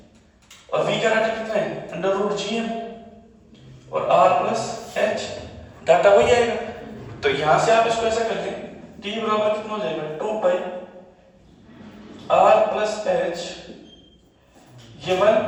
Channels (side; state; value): both; identical; correlation 1.00